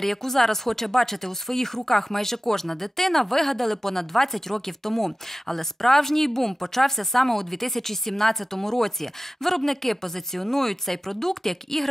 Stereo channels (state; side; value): normal; both; correlation 0.95